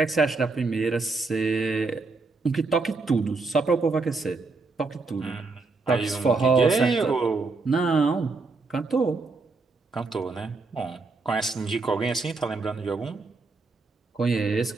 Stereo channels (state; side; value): quieter; left; 3.9 dB